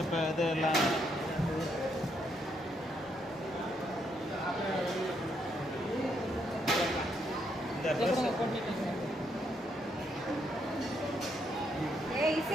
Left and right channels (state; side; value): normal; both; correlation 0.76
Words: இப்போ இது எல்லாம் இந்த ட்ரெஸ்